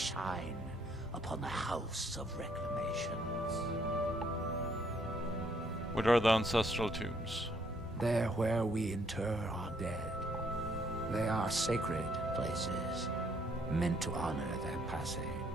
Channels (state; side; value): normal; both; correlation 0.68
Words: upon the House of Reclamations. What are the ancestral tombs? They're where we inter our dead. They are sacred places, meant to honor their passing.